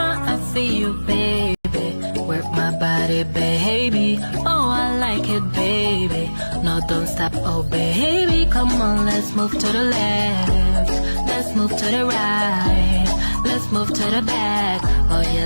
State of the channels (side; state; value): both; inverted; correlation -1.00